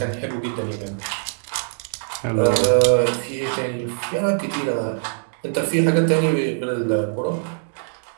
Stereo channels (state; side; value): silent; left; 64 dB below the other